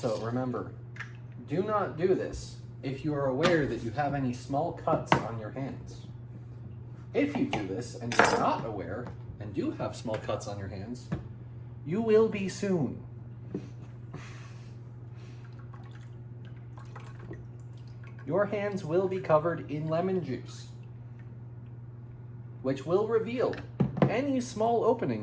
remember, do not do this if you are aware that you have any small cuts on your hands. If you do this and you're not aware and do have small cuts on your hands, you will be soon. Your hands will be covered in lemon juice, which will reveal any small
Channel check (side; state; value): both; identical; correlation 1.00